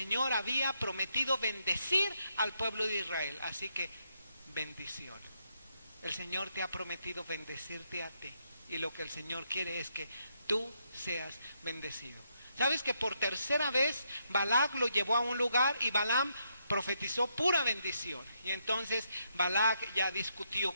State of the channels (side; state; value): both; inverted; correlation -0.78